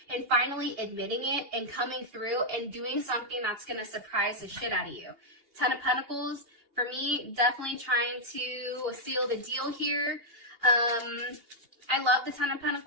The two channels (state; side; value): late; left; 2.8 ms